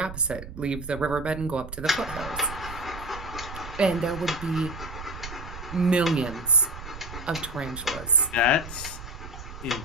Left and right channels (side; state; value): right; noise; rumble, 11 dB below the sound